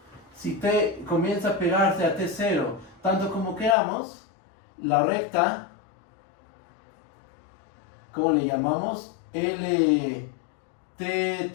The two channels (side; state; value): right; drops out; at 3.8 s